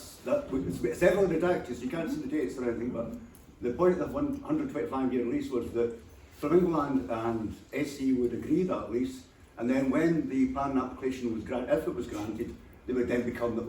heavily redacted, so you can't see the dates or anything, but the point of the 125-year lease was that Flamingo Land and SE would agree that lease, and then when the planning application was granted, if it was granted, they would then become the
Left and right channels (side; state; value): both; identical; correlation 1.00